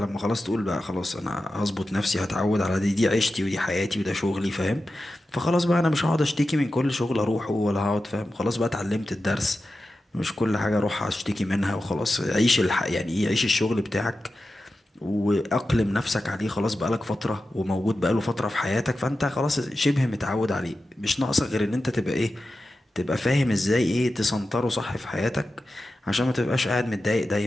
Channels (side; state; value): both; normal; correlation 0.92